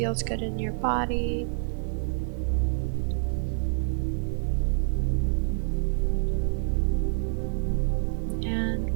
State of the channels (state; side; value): silent; left; digital silence